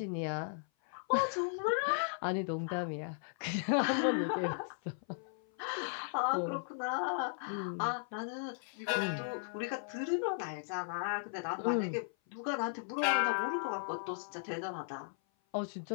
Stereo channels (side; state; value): right; silent; 53 dB below the other